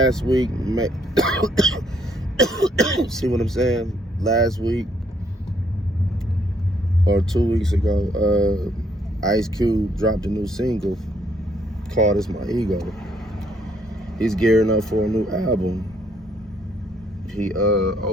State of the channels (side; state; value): both; normal; correlation 0.69